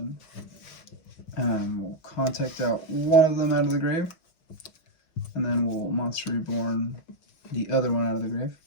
We'll Contact out one of them out of the grave, and then we'll Monster Reborn the other one out of the grave.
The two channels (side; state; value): right; late; 6.2 ms